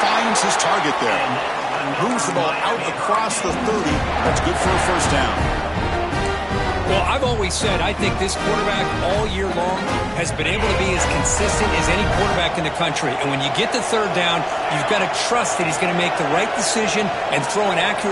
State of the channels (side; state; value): both; identical; correlation 1.00